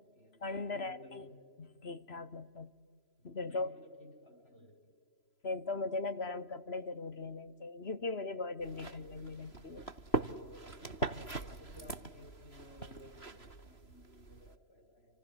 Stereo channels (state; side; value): late; right; 3.0 ms